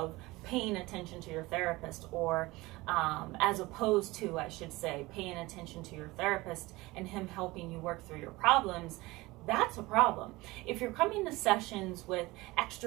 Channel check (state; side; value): quieter; left; 20.9 dB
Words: paying attention to your therapist, or as opposed to, I should say, paying attention to your therapist and him helping you work through your problems, that's a problem. If you're coming to sessions with